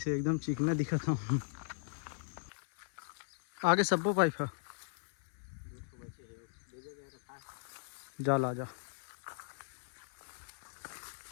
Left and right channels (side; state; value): right; silent; 53 dB below the other